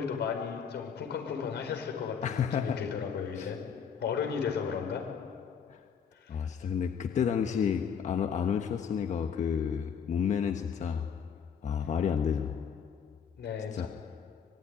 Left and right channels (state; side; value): quieter; right; 7.1 dB